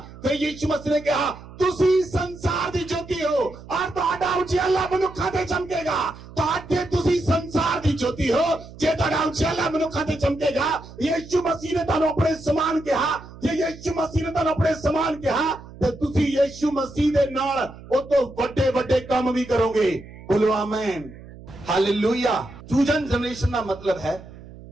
फिर यीशु मसीह ने कहा, तुसी संसार दी ज्योति हो और तुहाडा उजियाला मनुक्खां ते चमकेगा। तुहाडे तुसी संसार दी ज्योति हो, जे तुहाडा उजियाला मनुक्खां ते चमकेगा। यीशु मसीह ने तुहानूं अपने समान कहा। जे यीशु मसीह ने तुहानूं अपने समान कहा ते तुसी यीशु मसीह दे नाल ओ तो वड्डे वड्डे काम भी करोगे। बोलो आमीन, हालेलुया। चूजन जनरेशन का मतलब है,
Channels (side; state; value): right; noise; hum, 17 dB below the sound